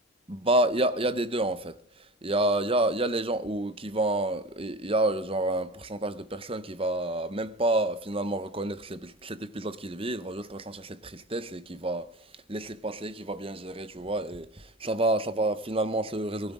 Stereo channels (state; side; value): normal; both; correlation 0.33